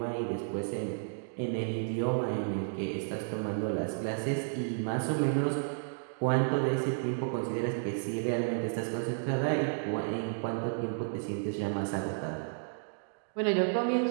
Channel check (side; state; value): left; silent; digital silence